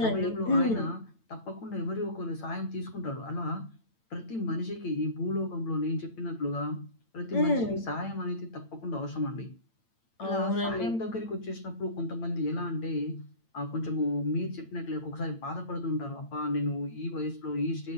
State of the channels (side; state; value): right; late; 8.9 ms